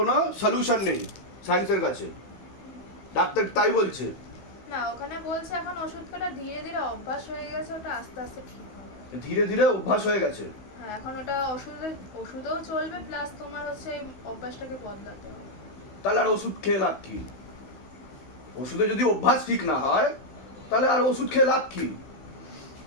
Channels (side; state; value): right; late; 16 ms